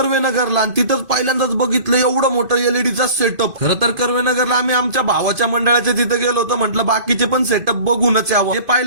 आणि तिथंच पहिल्यांदाच बघितलं एवढं मोठं एलईडीचा सेटअप. खरं तर कर्वेनगरला आम्ही आमच्या भावाच्या मंडळाच्या तिथे गेलो होतो. म्हटलं बाकीचे पण सेटअप बघूनच यावं. हे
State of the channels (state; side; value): late; left; 2.5 ms